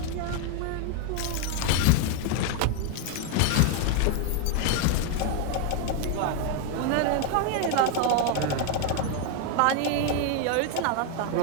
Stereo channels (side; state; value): both; different; correlation 0.01